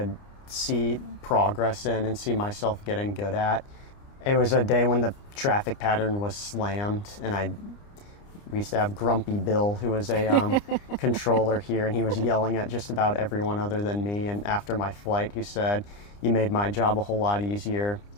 see progress in and see myself getting good at. It was a day when the traffic pattern was slammed, and we used to have Grumpy Bill, who was a controller here, and he was yelling at just about everyone other than me. And after my flight, he said, "You made my job a whole lot easier."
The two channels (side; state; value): right; late; 29 ms